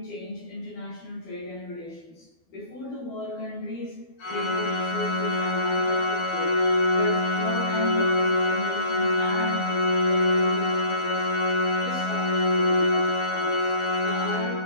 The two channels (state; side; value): late; right; 12 ms